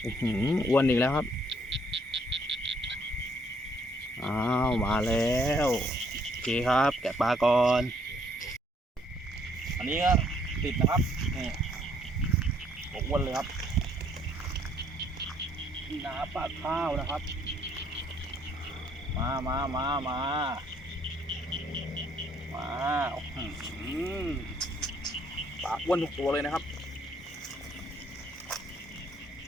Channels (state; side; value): normal; both; correlation 0.66